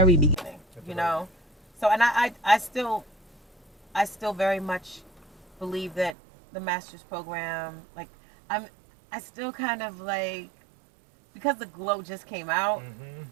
beginning, so and I still very much believe that the Masters program, like I still kind of like, because The Glow just came out,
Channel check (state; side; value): drops out; left; at 6.2 s